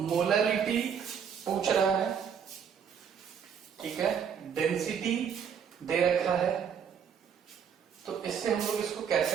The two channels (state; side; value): quieter; left; 7.5 dB